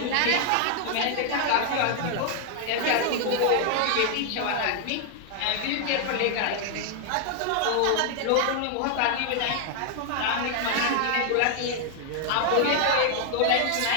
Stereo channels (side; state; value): both; different; correlation 0.00